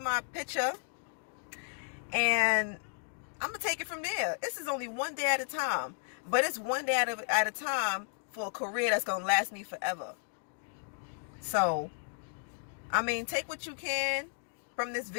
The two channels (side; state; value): right; silent; digital silence